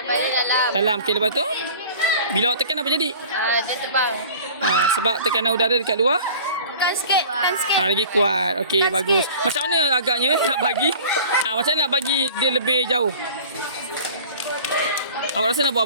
Dalam. Okey, lepas tu? Bila awak tekan apa jadi? Dia terbang. Sebab tekanan udara dekat luar? Tekan sikit. Lagi kuat. Okey, bagus. Macam mana agaknya nak bagi? Macam mana nak bagi dia lebih jauh? Awak rasa nak buat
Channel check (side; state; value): both; inverted; correlation -0.43